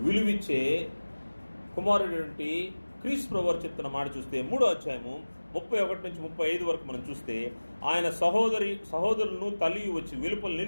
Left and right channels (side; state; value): both; inverted; correlation -1.00